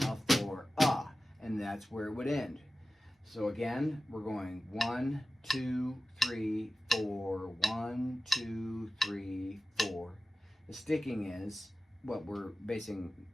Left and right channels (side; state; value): both; normal; correlation 0.96